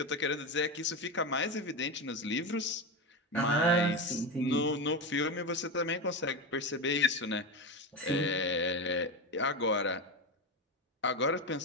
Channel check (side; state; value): both; normal; correlation 0.17